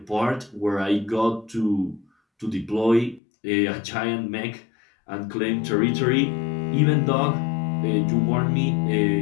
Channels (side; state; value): right; drops out; at 3.2 s